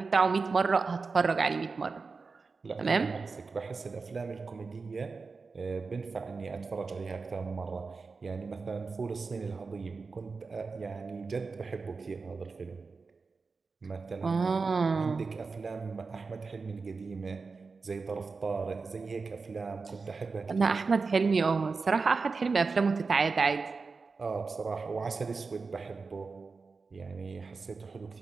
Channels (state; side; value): quieter; left; 4.4 dB